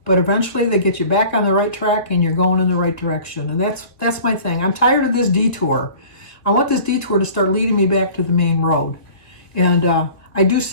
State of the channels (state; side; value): late; right; 1.7 ms